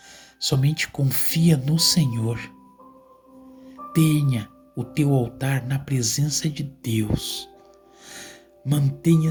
Somente confia no Senhor. Tenha o teu altar na presença de Deus.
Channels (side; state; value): both; identical; correlation 1.00